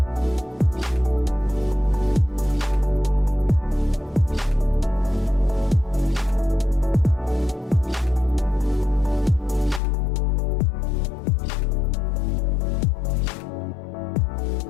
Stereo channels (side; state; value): right; drops out; at 9.8 s